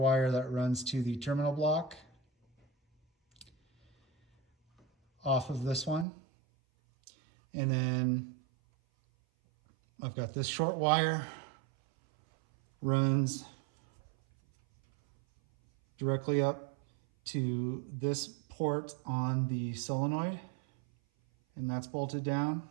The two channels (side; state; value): left; drops out; at 6.1 s